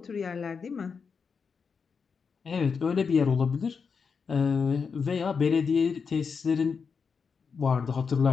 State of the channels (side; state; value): right; quieter; 5.7 dB